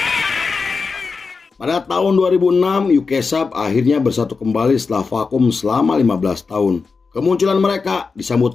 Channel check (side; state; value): right; quieter; 4.7 dB